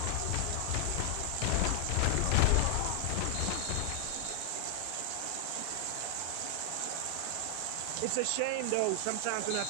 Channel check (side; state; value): both; different; correlation 0.00